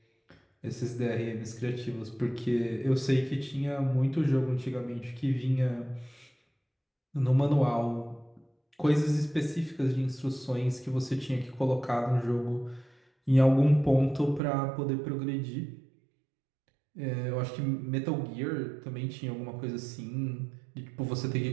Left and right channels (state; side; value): drops out; left; at 14.4 s